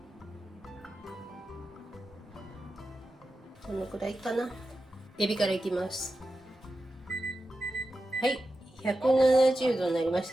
このくらいかな。エビからいきます。はい、170度になりまし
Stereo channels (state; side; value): normal; both; correlation 0.91